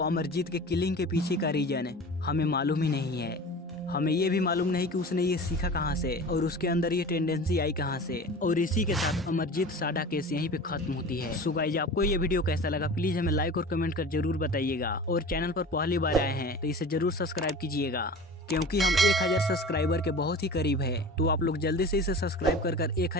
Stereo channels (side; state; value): both; normal; correlation 0.37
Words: अमरजीत के किलिंग के पीछे का रीजन हमें मालूम ही नहीं है। हमें ये भी मालूम नहीं कि उसने ये सीखा कहाँ से और उसके अंदर ये टेंडेंसी आई कहाँ से। और इसी के साथ अमरजीत साडा केस यहीं पे खत्म होती है। सो गाइस, आपको ये वीडियो कैसा लगा प्लीज हमें लाइक और कमेंट कर जरूर बताइएगा। और चैनल पर पहली बार आए हैं तो इसे जरूर सब्सक्राइब कीजिएगा, क्योंकि हम 1000 सब्सक्राइबर के बहुत ही करीब है। तो आप लोग जल्दी से इसे सब्सक्राइब कर